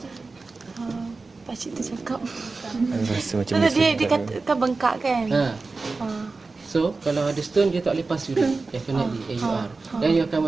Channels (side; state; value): left; quieter; 3.9 dB